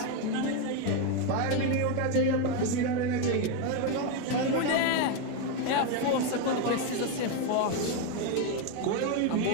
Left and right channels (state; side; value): different; both; correlation 0.02